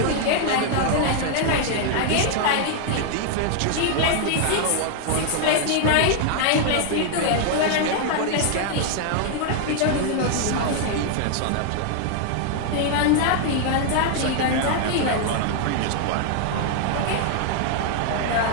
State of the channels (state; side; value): different; both; correlation 0.00